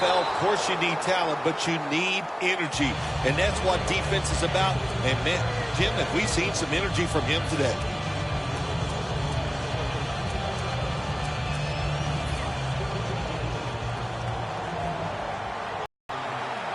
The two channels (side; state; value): both; identical; correlation 1.00